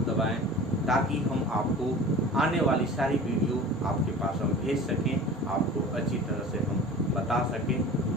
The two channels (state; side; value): normal; both; correlation 0.39